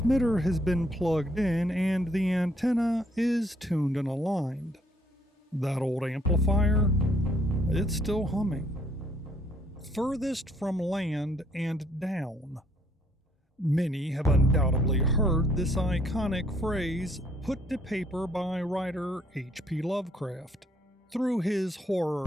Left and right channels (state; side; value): normal; both; correlation 0.66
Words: has been plugged in and the antenna is tuned and aligned. That old amplifier, it's still humming. Furthest from land and down. Many have undoubtedly heard this iconic phrase put to paper by writer H.P. Lovecraft. Through his